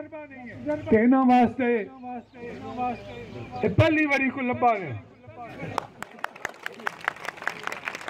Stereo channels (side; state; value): both; identical; correlation 1.00